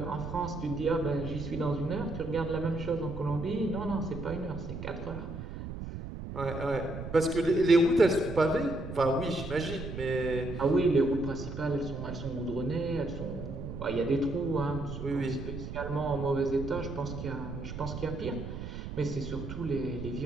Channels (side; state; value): right; noise; rumble, 8 dB below the sound